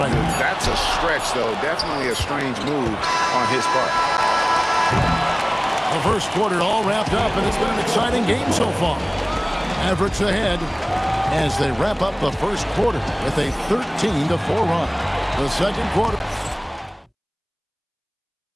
That's a stretch, though. Definitely a strange move on his part. The first quarter all wrapped up, and it's been an exciting game so far. Mavericks ahead as they wrap up the first quarter with a 13-4 run. The second quarter.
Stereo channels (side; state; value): both; identical; correlation 1.00